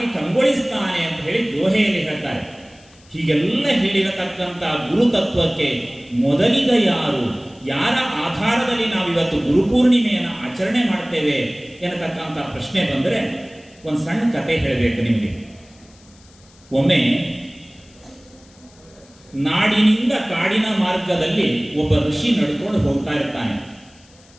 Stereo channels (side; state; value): left; noise; hiss, 28 dB below the sound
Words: ಕಂಗೊಳಿಸ್ತಾನೆ ಅಂತ ಹೇಳಿ ದೋಹೆಯಲ್ಲಿ ಹೇಳ್ತಾರೆ. ಹೀಗೆಲ್ಲ ಹೇಳಿರತಕ್ಕಂಥ ಗುರುತತ್ವಕ್ಕೆ ಮೊದಲಿಗ ಯಾರು, ಯಾರ ಆಧಾರದಲ್ಲಿ ನಾವಿವತ್ತು ಗುರುಪೂರ್ಣಿಮೆಯನ್ನು ಆಚರಣೆ ಮಾಡ್ತೇವೆ ಎನ್ನತಕ್ಕಂಥ ಪ್ರಶ್ನೆ ಬಂದರೆ ಒಂದು ಸಣ್ಣ ಕತೆ ಹೇಳಬೇಕು ನಿಮಗೆ. ಒಮ್ಮೆ ನಾಡಿನಿಂದ ಕಾಡಿನ ಮಾರ್ಗದಲ್ಲಿ ಒಬ್ಬ ಋಷಿ ನಡ್ಕೊಂಡು ಹೋಗ್ತಾ ಇರ್ತಾನೆ.